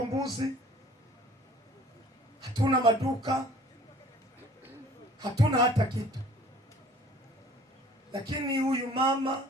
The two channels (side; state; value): both; normal; correlation 0.52